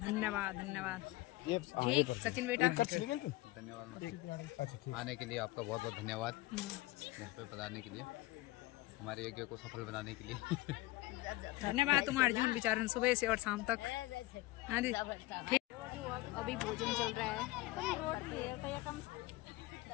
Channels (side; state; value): right; quieter; 19.1 dB